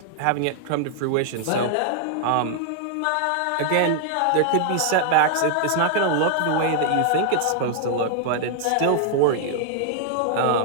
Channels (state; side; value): different; both; correlation 0.00